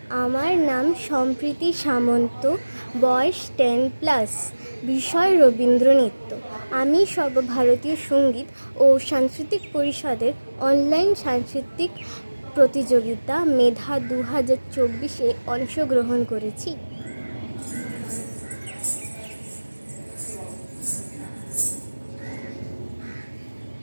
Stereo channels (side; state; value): both; inverted; correlation -1.00